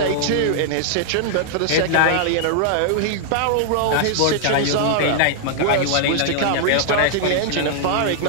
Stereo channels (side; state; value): both; different; correlation -0.01